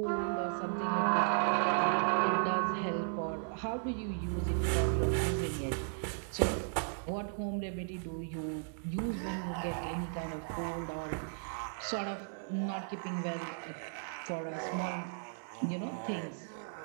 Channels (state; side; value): silent; left; digital silence